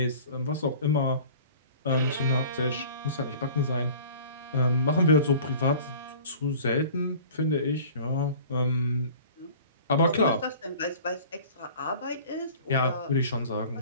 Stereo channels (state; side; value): inverted; both; correlation -0.45